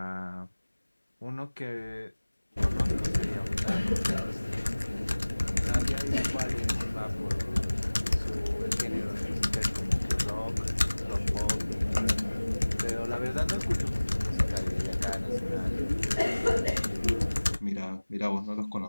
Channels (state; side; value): inverted; both; correlation -1.00